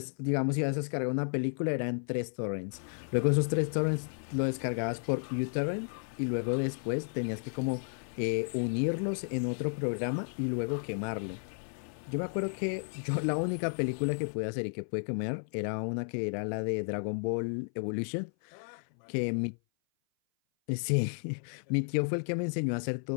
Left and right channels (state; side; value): silent; right; 56 dB below the other